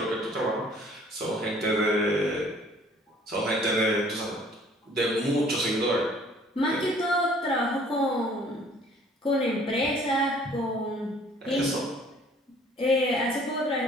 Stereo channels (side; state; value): both; normal; correlation 0.56